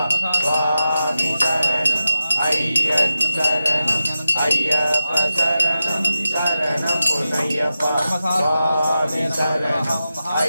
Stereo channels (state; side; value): inverted; both; correlation -0.91